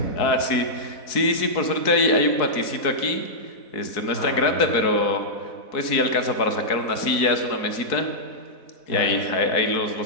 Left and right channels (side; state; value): right; late; 4.1 ms